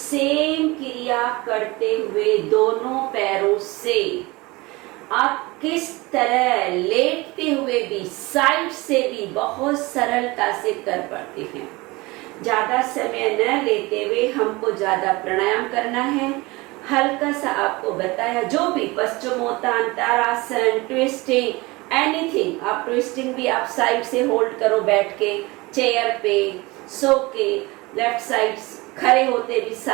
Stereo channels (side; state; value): left; quieter; 22.9 dB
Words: क्रिया करते हुए दोनों पैरों से आप किस तरह लेटते हुए भी साइड से भी बहुत सरलता से कर पाते हैं। ज्यादा समय न लेते हुए हमको ज्यादा प्राणायाम करना है। हल्का सा आपको बताया, जो भी पश्चिमोत्तान, तारासन, ट्विस्टिंग, एनीथिंग। आप ट्विस्टिंग भी आप साइड से होल्ड करो बैठ के, चेयर पे, सो के, लेफ्ट साइड खड़े होते भी